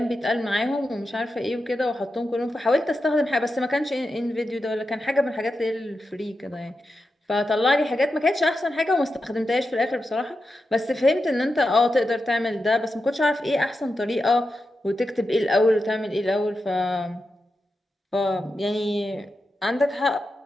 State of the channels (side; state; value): both; normal; correlation 0.89